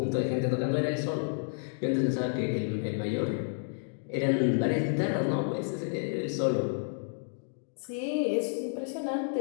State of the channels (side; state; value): right; silent; digital silence